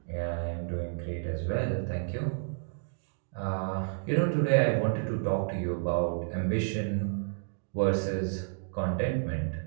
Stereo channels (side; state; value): left; silent; digital silence